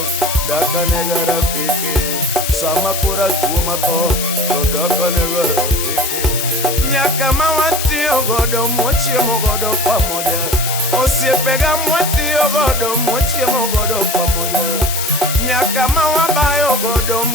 daka nega rafiki, sama kora tuo matho to daka nega rafiki. Nyaka ma watiyo godo mwachiemo godo pamoja, osiepega mwatiyo godo mwachiemo godo pamoja. Nyaka ma wabayo godo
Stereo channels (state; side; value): noise; left; hiss, 4 dB below the sound